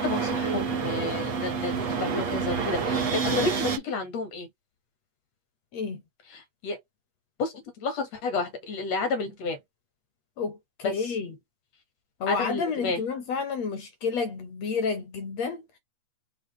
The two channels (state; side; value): late; right; 8.3 ms